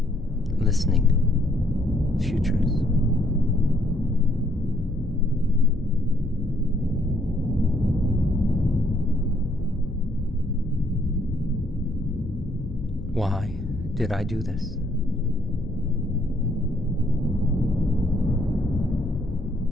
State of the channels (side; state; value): left; noise; hum, 14 dB below the sound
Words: listening futures. Why did I do this?